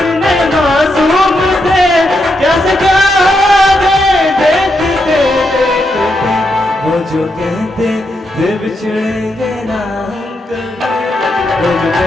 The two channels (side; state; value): both; normal; correlation 0.82